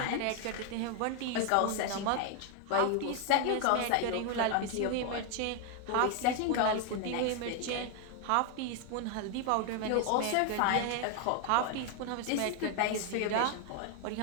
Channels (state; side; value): different; both; correlation 0.00